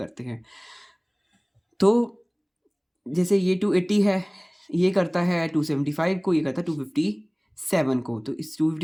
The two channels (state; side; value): identical; both; correlation 1.00